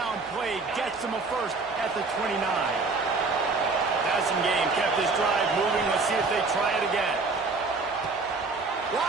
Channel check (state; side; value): quieter; left; 3.9 dB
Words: play gets him a first at the 29. passing game kept this drive moving. Let's see if they try it again.